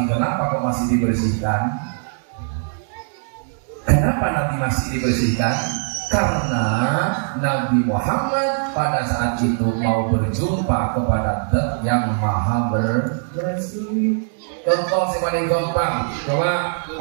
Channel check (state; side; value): silent; left; digital silence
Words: kenapa kok masih dibersihkan? Kenapa Nabi masih dibersihkan? Karena Nabi Muhammad pada saat itu mau berjumpa kepada Zat yang Maha bersih. Contoh yang paling gampang, coba